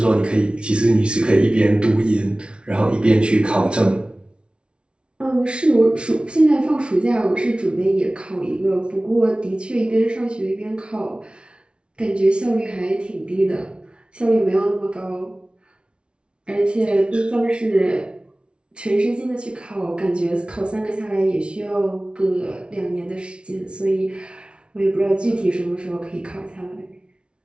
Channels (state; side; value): late; left; 0.058 ms